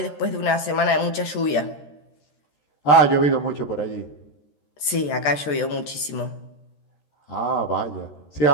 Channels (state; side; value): late; right; 13 ms